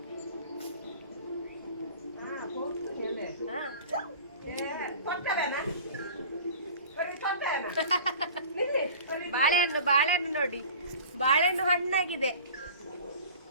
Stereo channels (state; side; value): inverted; both; correlation -0.42